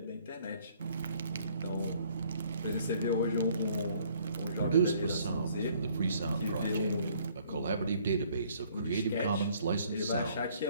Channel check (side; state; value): both; inverted; correlation -0.61